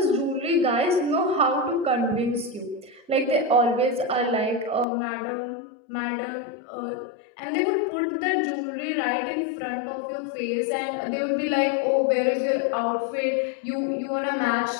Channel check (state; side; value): drops out; right; at 4.9 s